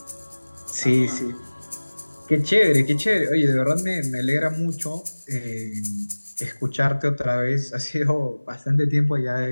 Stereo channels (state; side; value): inverted; both; correlation -1.00